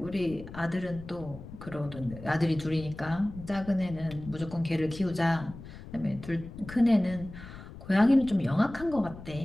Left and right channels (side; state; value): left; noise; rumble, 14 dB below the sound